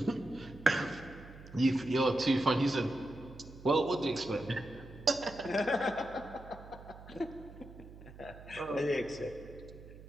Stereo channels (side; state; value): right; noise; hum, 17 dB below the sound